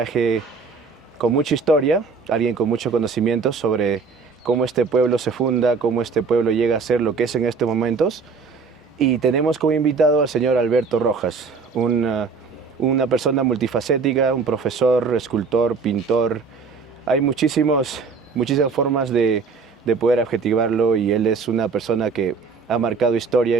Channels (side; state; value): left; quieter; 4.9 dB